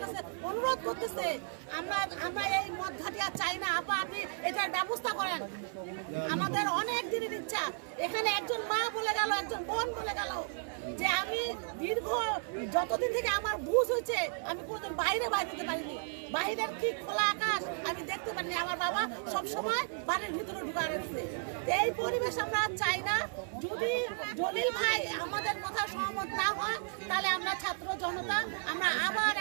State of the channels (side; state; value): left; silent; 55 dB below the other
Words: কাছে অনুরোধ করতেছে, আমরা এই মদ ঘাটি আর চাই না, আপা আপনি এটার ব্যবস্থা করেন। আমাদের অনেক দিনের ইচ্ছা। এখানে একজন মা বলে গেল, একজন বোন বলে গেল যে আমি দীর্ঘ যতদিন থেকে আমার বুঝ হয়েছে আমি কোনোদিন বাইরে দিতে পারিনি। বাইরের কি খোলা আকাশ আমি দেখতে পারিনি। আমার বাবা সবসময় বাড়ির ভিতরে ঢুকা রেখেছে। এই পরিবেশ আমরা চাই না। যদি জলিল ভাই আমাদের কথা সহমত না হয়, তাহলে আমরা ছাত্র জনতা আমরা আবার